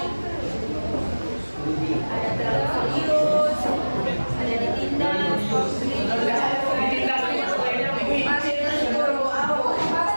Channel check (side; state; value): both; inverted; correlation -1.00